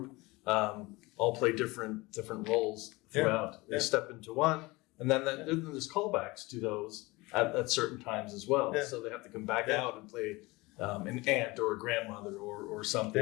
all play different roles throughout. Yeah. They step into one, and then there's callbacks to those at certain times as well. Yeah. So they have to come back out and play an aunt or a grandmother or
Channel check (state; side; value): quieter; right; 22.6 dB